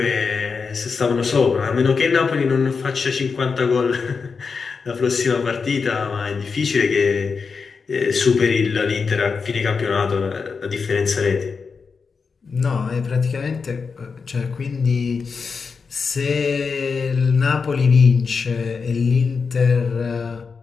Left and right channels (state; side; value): quieter; right; 5.2 dB